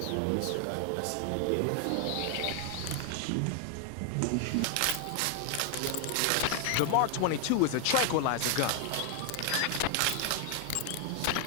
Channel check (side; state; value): both; different; correlation 0.00